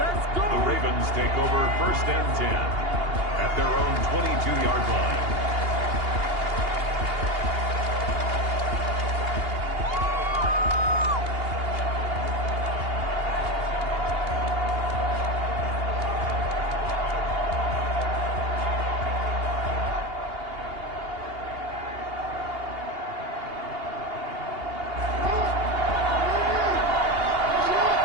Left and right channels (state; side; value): late; left; 2.8 ms